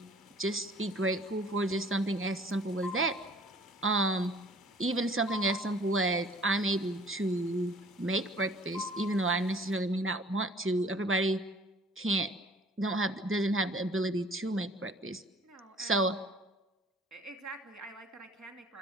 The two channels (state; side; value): normal; both; correlation 0.52